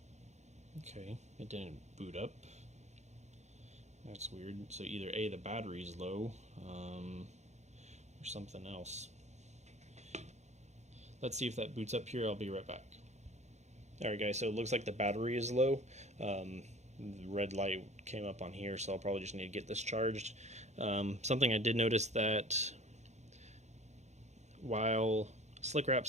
Okay, it didn't boot up. That's weird. So either A, the battery's low, or something else. Let's see if that boots up here. I'll be right back. Alright guys, so it looks like the battery is low. The red light came up on here, so I'll probably just need to get this charged. Something I did notice that while Slick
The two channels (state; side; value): late; left; 0.33 ms